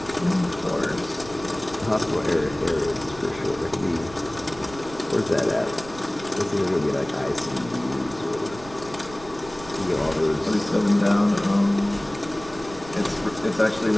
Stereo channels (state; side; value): noise; right; rumble, 17 dB below the sound